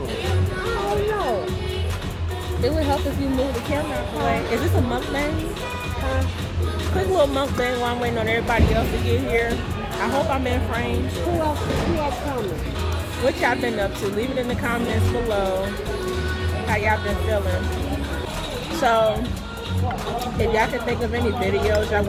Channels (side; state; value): both; identical; correlation 1.00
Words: I don't know. It would help if you move the camera out the way. Is this a mukbang? Quick little mukbang while I'm waiting on everybody else to get here. I hope I'm in frame. Who else coming? What y'all been up to? Leave it in the comments below. How y'all been feeling? So, if y'all can think of any videos y'all